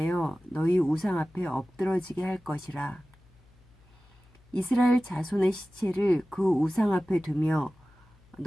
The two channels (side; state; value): left; noise; hum, 29 dB below the sound